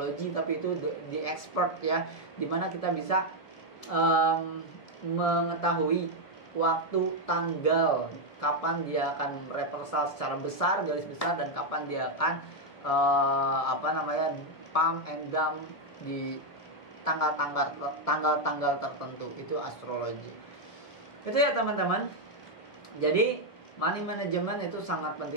tapi itu the expert ya, dimana kita bisa mengetahui waktu, tanggal, kapan dia akan reversal secara besar, garis besar, dan kapan dia akan pump and dump di tanggal tertentu. Itu astrologi. Itu ya teman-teman. Jadi money management itu sangat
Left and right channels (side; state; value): right; late; 1.7 ms